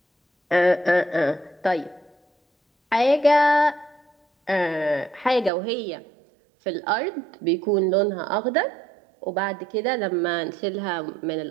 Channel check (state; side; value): drops out; left; at 5.5 s